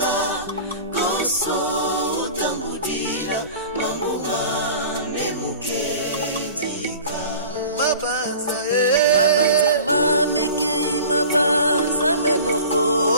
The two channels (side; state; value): both; inverted; correlation -0.41